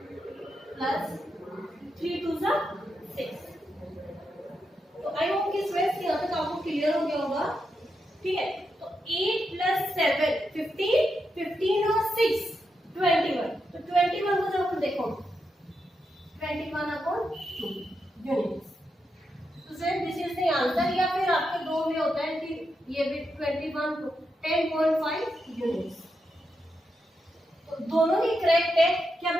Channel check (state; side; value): normal; both; correlation 0.85